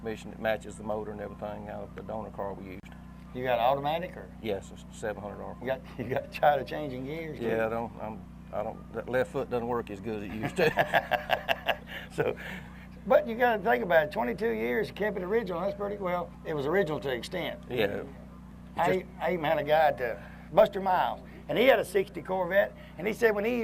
that matches the motor and everything out of the donor car we used. You got automatic or? Yes, it's 700 RPM. You got tired of changing gears? Yeah, that left foot doesn't work as good as it used to. So, but you got to think about it. 22 years, you kept it original. That's pretty well. It was original to extent. Yeah. I even had a guy at Buster Miles, and he had a 60 Corvette, and he said when he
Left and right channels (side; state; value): both; identical; correlation 1.00